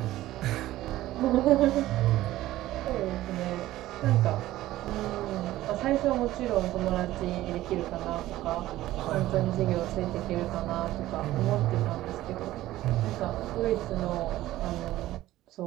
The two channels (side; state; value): left; quieter; 15.4 dB